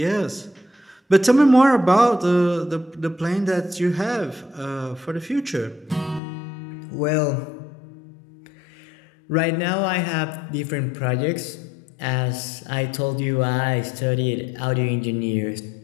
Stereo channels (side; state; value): right; drops out; at 6.2 s